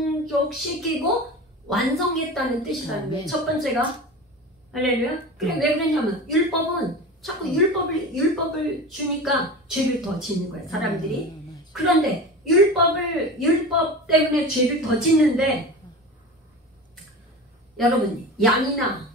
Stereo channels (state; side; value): normal; both; correlation 0.31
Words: 완성했다는 뜻이라는 거예요. 첫 번째가 할렐루야. 그래, 왜 그러냐면 율법은 자꾸 율법을 주니까 죄를 더 짓는 거예요, 사람들이. 그런데 율법 때문에 죄를 더 짓는데, 여러분, 양이나